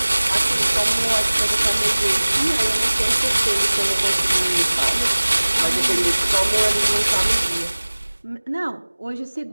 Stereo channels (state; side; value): inverted; both; correlation -1.00